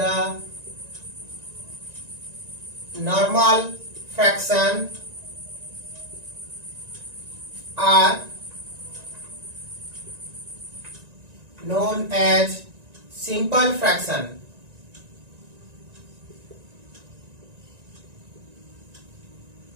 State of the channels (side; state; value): left; late; 1.9 ms